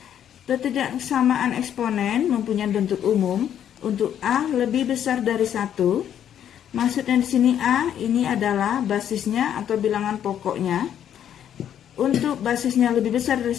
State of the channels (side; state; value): right; quieter; 9.8 dB